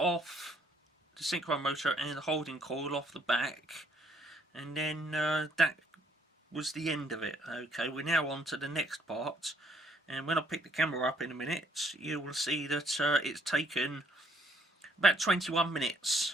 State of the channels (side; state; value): both; normal; correlation 0.67